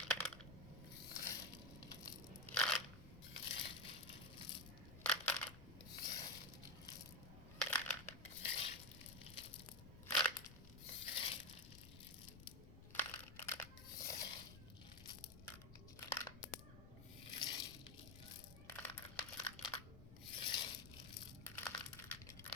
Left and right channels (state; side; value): noise; left; rumble, 15 dB below the sound